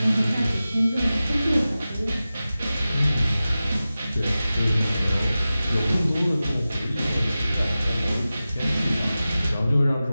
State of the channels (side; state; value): both; inverted; correlation -0.95